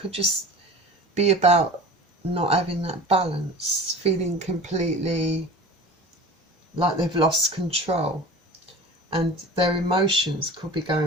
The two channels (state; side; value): normal; both; correlation 0.38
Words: just be about not having that balance, feeling completely like they've lost control, and their emotions could be